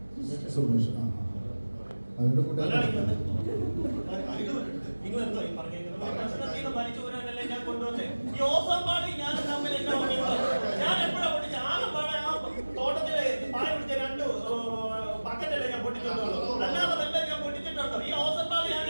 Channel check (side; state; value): both; inverted; correlation -1.00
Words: സുമേഷ് അവരുടെ കൂടെ നിങ്ങൾ എന്തോ ഈ പറഞ്ഞേക്കുന്നത്? പ്രശ്നത്തിന് വലിച്ചു പോരാനല്ലേ ഞാൻ കൊണ്ടുവന്നേ. ഈ ഓസമ്പാടി ഞാൻ തമ്മിൽ എന്നാ ഞാൻ എപ്പോഴാ പൊട്ടിച്ച? ആലമ്പാടെ ആ തോട്ടത്തിലെ പായ പിടിച്ച 2 ബക്കറ്റല്ലേ ഞാൻ പൊട്ടിച്ചിട്ടുള്ളൂ. അല്ലാതെ വല്ല ഞാൻ പൊട്ടിച്ചിട്ടുണ്ടോ? ഈ ഓസമ്പാടി ഞാൻ